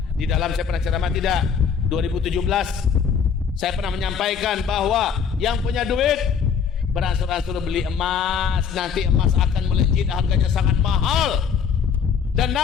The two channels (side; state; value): right; quieter; 7.0 dB